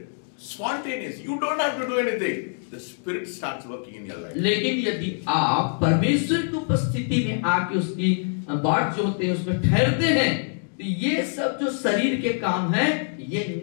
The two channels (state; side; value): silent; right; 62 dB below the other